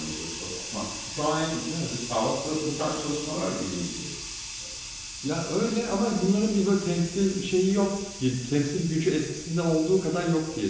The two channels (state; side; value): identical; both; correlation 1.00